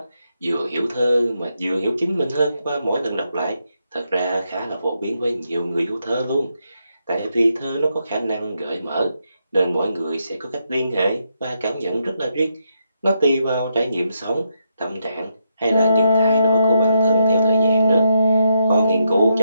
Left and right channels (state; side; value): inverted; both; correlation -0.80